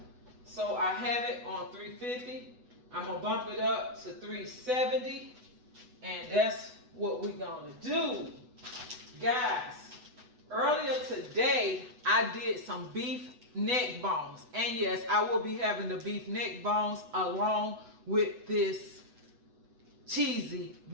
so I have it on 350. I'm gonna bump it up to 370, and that's what we're gonna do. Guys, earlier today, I did some beef neck bones. And yes, I will be having the beef neck bones along with this cheesy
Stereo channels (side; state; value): left; late; 8.1 ms